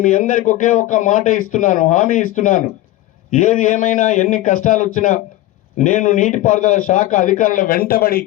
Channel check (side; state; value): right; quieter; 15.9 dB